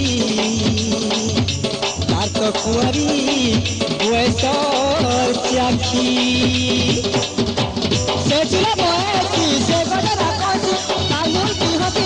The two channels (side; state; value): both; identical; correlation 1.00